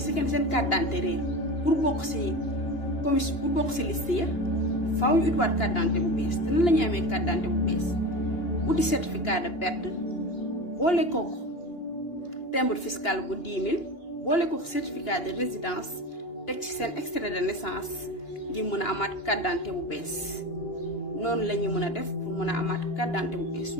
carte d'identité réer pour bokk si commission pour bokk si liste ya faaw ñu utiwaat carte d'identité bu bees te nan la ñuy amee carte d'identité bu bees uti certificat de perte boole kooku timbre fiscal bu 10 000 boole kooku certificat de résidence teg ci seen extrait de naissance ngir mën a amaat carte d'identité bu bees noonu la ñuy mën a def pour mën a amaat carte d'identité bu bees su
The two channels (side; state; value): right; late; 2.9 ms